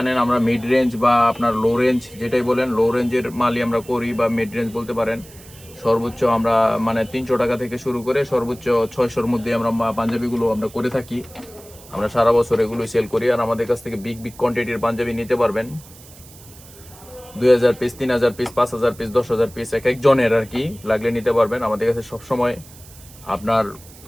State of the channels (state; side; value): noise; right; hiss, 21 dB below the sound